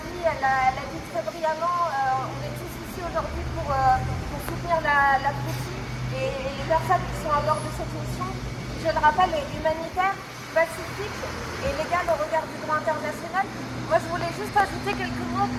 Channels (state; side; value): identical; both; correlation 1.00